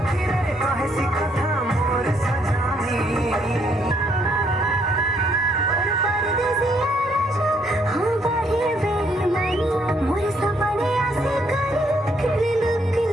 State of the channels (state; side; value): normal; both; correlation 0.70